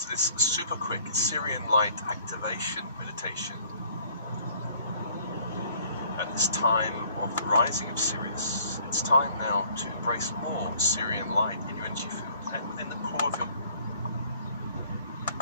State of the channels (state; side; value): inverted; both; correlation -0.57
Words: this super quick Syrian light activation meditation at this time of the rising of Sirius. It's time now to embrace more Syrian light in your energy field and within the core of your